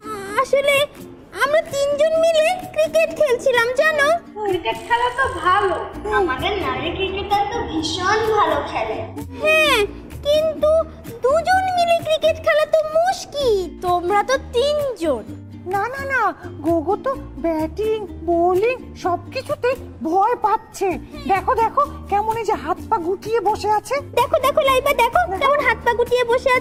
আসলে আমরা তিনজন মিলে ক্রিকেট খেলছিলাম জানো। ক্রিকেট খেলা তো ভালো, আমাদের নারী ক্রিকেটার তো ভীষণ ভালো খেলে। হ্যাঁ, কিন্তু দুজন মিলে ক্রিকেট খেলা তো মুশকিল। তোমরা তো তিনজন। না না না, গোগো তো ব্যাটিং বোলিং সবকিছুতে ভয় পাচ্ছে। দেখো দেখো কেমন এই যে হাত পা গুটিয়ে বসে আছে। দেখো দেখো লাইবা, দেখো কেমন হাত পা গুটিয়ে বসে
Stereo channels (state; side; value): identical; both; correlation 1.00